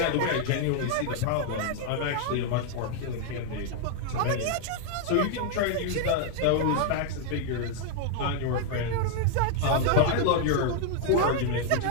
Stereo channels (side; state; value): both; different; correlation 0.00